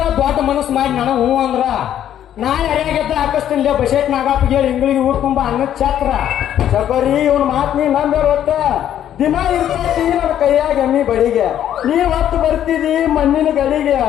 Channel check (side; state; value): right; quieter; 10.7 dB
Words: ದೊಡ್ಡ ಮನಸ್ಸು ಮಾಡಿ ನನಗೆ ಹೂ ಅಂದ್ರ ನಾ ಯಾರ್ಯಾಗೆದ್ದ ಹಾಕಿಸ್ತೀನಿ ಬಸೇಟ್ ನಾಗಪ್ಪ ಹೇಳಿ ಇಂಗ್ಳಿಗೆ ಊರ್ ತುಂಬ ಅನ್ನದ ಛತ್ರ. ಚಕೋರಿ ಇವ್ನ ಮಾತು ನೀ ನಂಬೇರ ಒಟ್ಟ ದಿನ ಇರ್ತೈತಿ ನನ್ನ ಕೈಯಾಗ ಎಮ್ಮಿ ಬಡಿಗೆ. ನೀ ಹೊತ್ತು ಬರ್ತಿದಿ ಮಣ್ಣಿನ ಗಡಿಗೆ.